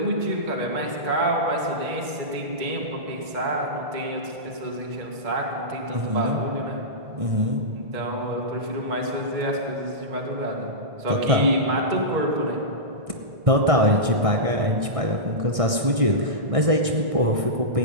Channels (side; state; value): left; late; 1.6 ms